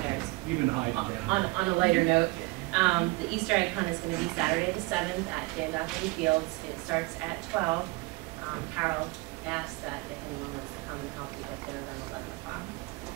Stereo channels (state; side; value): quieter; left; 24.3 dB